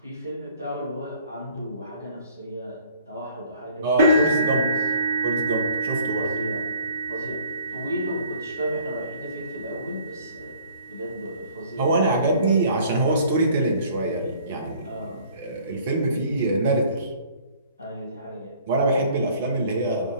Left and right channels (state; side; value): inverted; both; correlation -0.56